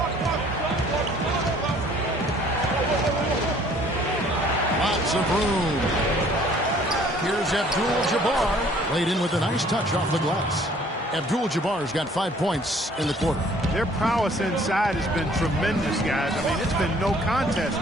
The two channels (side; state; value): both; normal; correlation 0.57